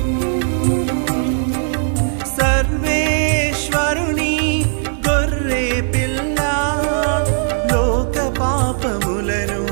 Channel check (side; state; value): left; silent; digital silence